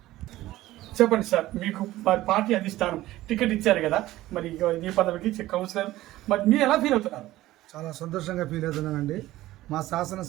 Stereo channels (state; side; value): quieter; left; 16.1 dB